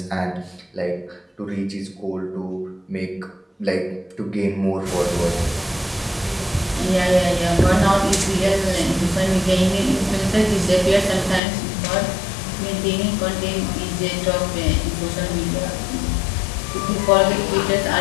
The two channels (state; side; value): drops out; right; at 11.4 s